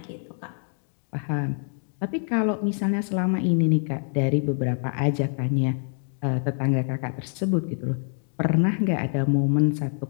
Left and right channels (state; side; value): silent; right; 61 dB below the other